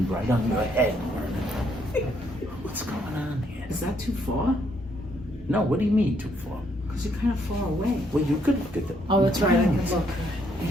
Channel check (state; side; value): normal; both; correlation 0.71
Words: right on your head. What's going on here? Is that too far? No, what do you mean too far? Because you're kind of far away. Well, you could look at the. Oh, that's right. I can look.